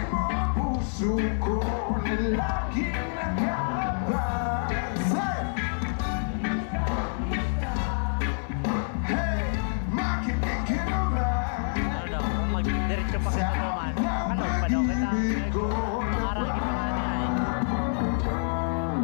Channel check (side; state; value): right; silent; 60 dB below the other